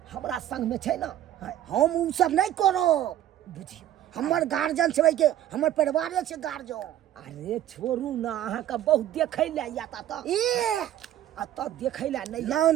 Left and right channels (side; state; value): left; quieter; 12.0 dB